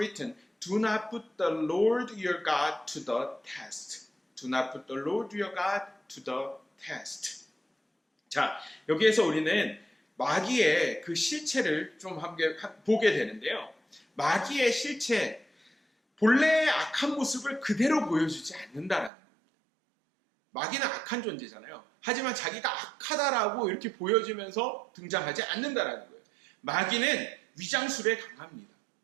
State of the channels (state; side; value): drops out; left; at 19.1 s